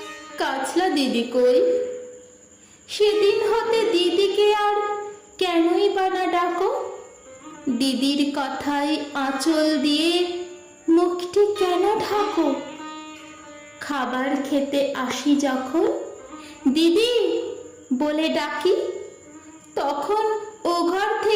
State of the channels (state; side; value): identical; both; correlation 1.00